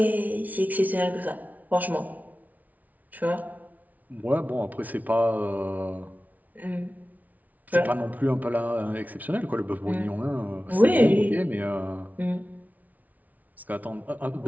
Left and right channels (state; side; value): late; left; 0.075 ms